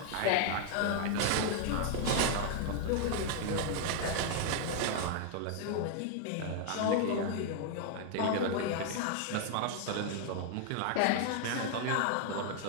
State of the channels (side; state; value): both; different; correlation 0.00